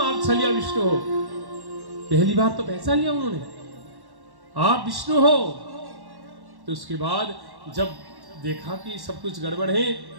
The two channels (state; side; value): late; left; 1.1 ms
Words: आप छलिया विष्णु हो। पहली बार तो पहचान लिया उन्होंने, आप विष्णु हो। तो उसके बाद जब देखा कि सब कुछ गड़बड़ है,